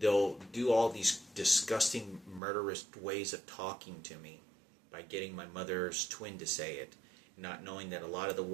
do all these disgusting, murderous ways of talking to me by getting my mother's twin to say it, not knowing that a lot of the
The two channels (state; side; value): drops out; left; at 2.4 s